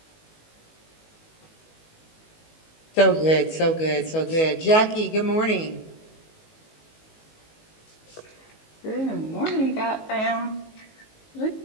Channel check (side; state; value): right; late; 19 ms